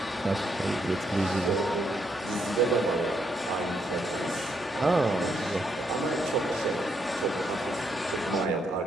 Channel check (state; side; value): normal; both; correlation 0.76